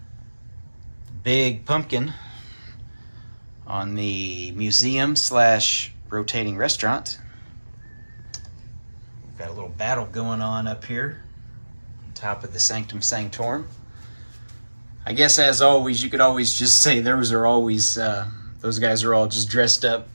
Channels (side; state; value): both; inverted; correlation -1.00